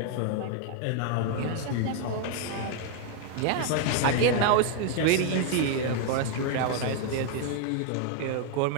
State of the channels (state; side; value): different; both; correlation 0.00